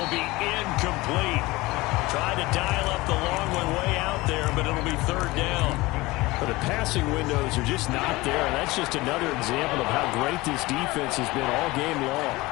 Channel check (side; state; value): right; quieter; 20.9 dB